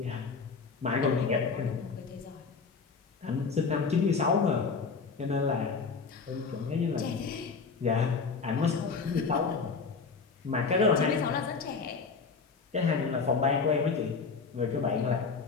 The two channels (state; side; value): quieter; right; 4.9 dB